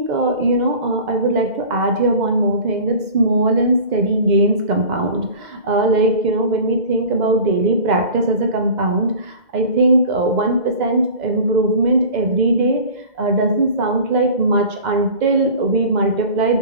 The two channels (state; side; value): late; left; 2.0 ms